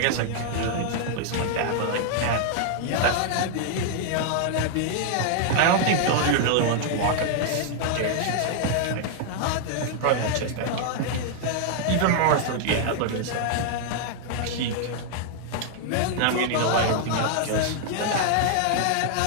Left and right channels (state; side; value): different; both; correlation -0.01